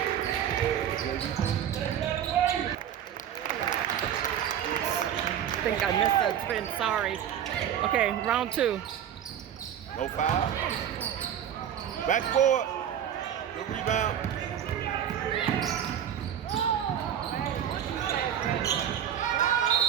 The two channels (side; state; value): left; quieter; 9.7 dB